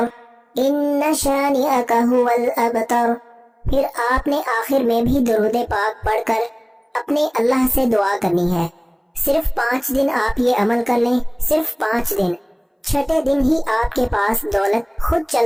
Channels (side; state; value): both; identical; correlation 1.00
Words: إِنَّ شَانِئَكَ هُوَ الْأَبْتَرُ۔ پھر آپ نے آخر میں بھی درود پاک پڑھ کر اپنے اللہ سے دعا کرنی ہے۔ صرف 5 دن آپ یہ عمل کر لیں، صرف 5 دن۔ چھٹے دن ہی آپ کے پاس دولت خود